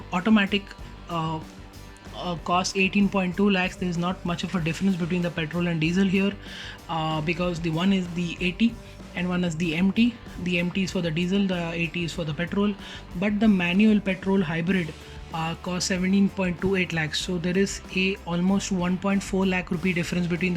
automatic cost 18.2 lakhs. There is not much of a difference between the petrol and diesel here, because the one is the AT and one is the MT. The MT is for the diesel, the AT is for the petrol, but the manual petrol hybrid costs 17.28 lakhs. So there is a almost 1.4 lakh rupee difference between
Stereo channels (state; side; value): identical; both; correlation 1.00